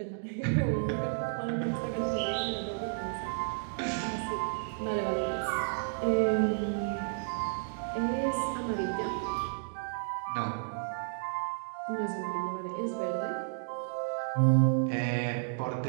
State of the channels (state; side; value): silent; left; digital silence